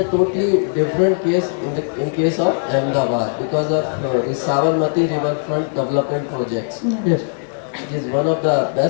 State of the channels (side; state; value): right; silent; digital silence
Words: totally different case in case of Ahmedabad because of the Sabarmati riverfront development projects. Yeah. Yes. It is one of the